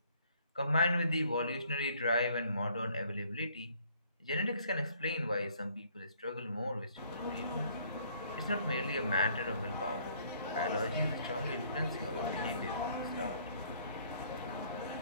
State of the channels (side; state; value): both; inverted; correlation -0.62